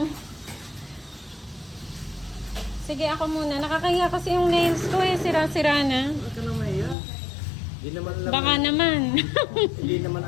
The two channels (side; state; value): right; drops out; at 7.0 s